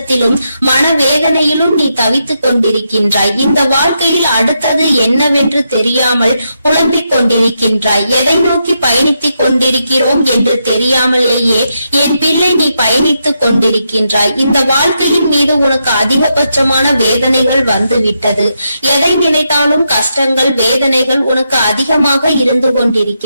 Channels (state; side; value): inverted; both; correlation -0.83